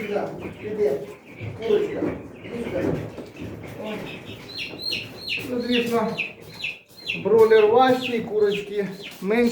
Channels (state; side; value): identical; both; correlation 1.00